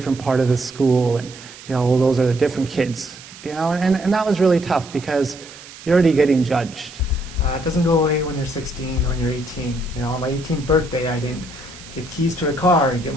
part of the school, and, those are the different kids, and that was really tough because you're already getting judged. It doesn't go away when you're 16 or when you're 18. On my 18th birthday, I didn't get keys to a car and get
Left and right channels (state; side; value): noise; right; hiss, 18 dB below the sound